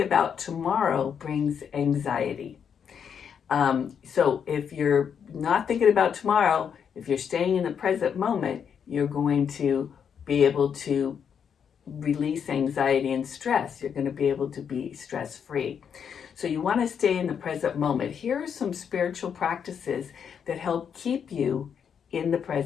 about tomorrow brings anxiety. So if you're not thinking about tomorrow, if you're staying in the present moment, you're going to be able to release anxiety and stress. You're going to be able to be stress-free. So you want to stay in the present moment. Here are some spiritual practices that help keep you in the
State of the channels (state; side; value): quieter; right; 7.5 dB